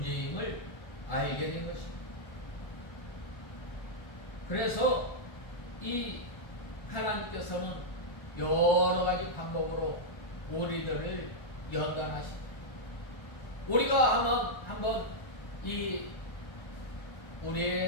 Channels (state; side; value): late; right; 1.4 ms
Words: 알게 된 것입니다. 그래서 이 하나님께서는 여러 가지 방법으로 우리들을 연단하십니다. 우리가 한번 이